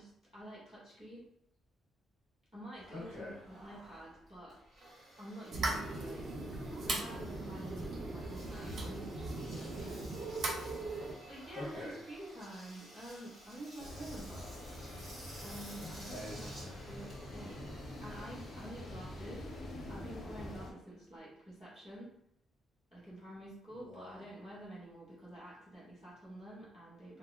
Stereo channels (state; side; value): normal; both; correlation 0.78